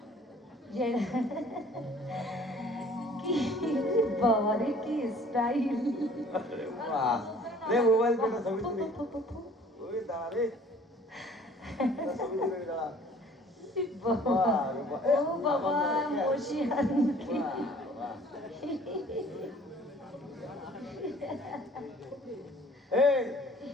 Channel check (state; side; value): normal; both; correlation 0.53